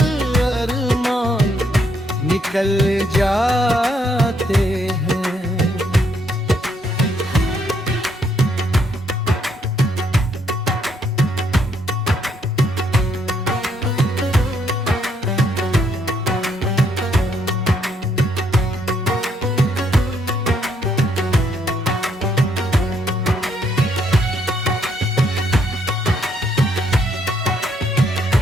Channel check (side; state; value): both; normal; correlation 0.72